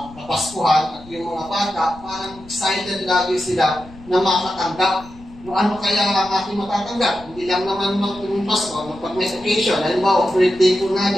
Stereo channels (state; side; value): noise; left; rumble, 20 dB below the sound